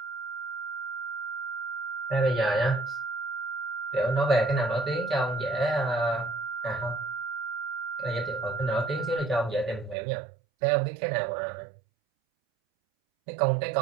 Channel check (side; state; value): left; drops out; at 10.0 s